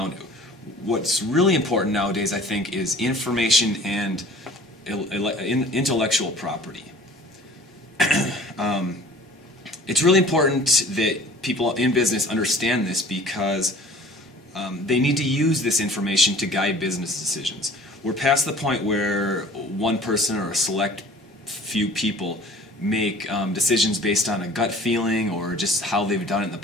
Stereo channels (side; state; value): both; normal; correlation 0.48